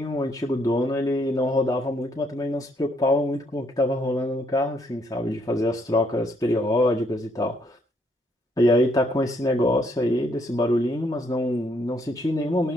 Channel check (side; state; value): both; normal; correlation 0.71